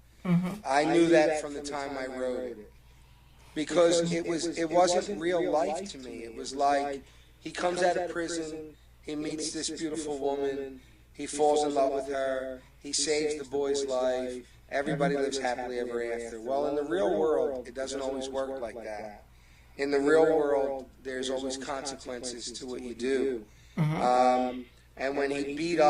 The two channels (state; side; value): identical; both; correlation 1.00